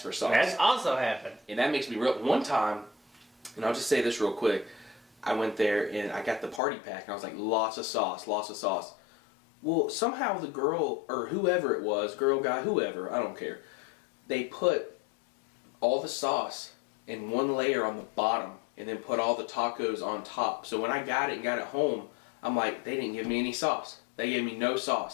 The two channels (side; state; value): right; drops out; at 6.6 s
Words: for sauce. That's also happened. And that makes me real. One time, and I'll just say this real quick, I went there and I got the party pack and I was like, lots of sauce. Well, somehow the girl, or whoever it was, girl, guy, whoever, I don't care, they put all the sauce in one layer on the bottom and then put all the tacos on top. So when I got it home, I'm like, they didn't give me any sauce. They gave me no